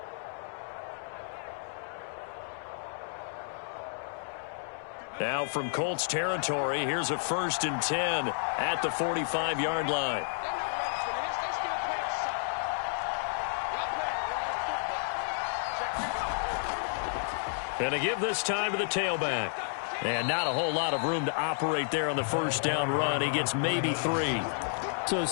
Now from Colts territory, here's a 1st and 10 at the 45-yard line. And to give this time to the tailback. And not a whole lot of room to operate there on the first down run. He gets maybe 3. So,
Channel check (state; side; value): silent; right; 57 dB below the other